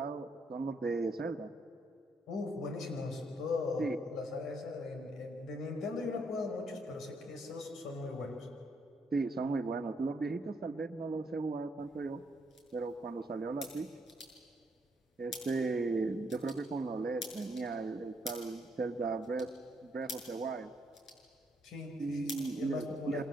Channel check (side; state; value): both; normal; correlation 0.73